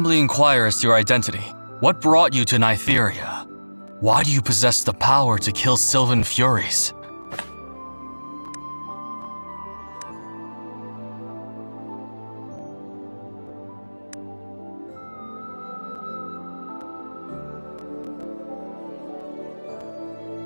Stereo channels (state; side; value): inverted; both; correlation -1.00